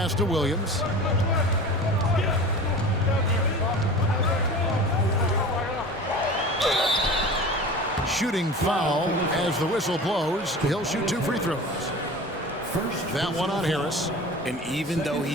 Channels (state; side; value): normal; both; correlation 0.36